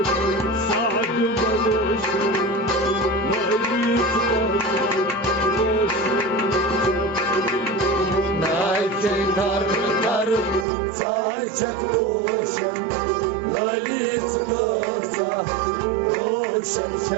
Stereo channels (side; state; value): left; drops out; at 10.7 s